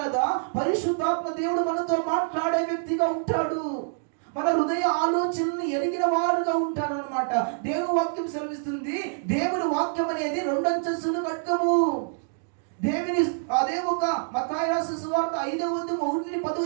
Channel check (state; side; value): silent; left; digital silence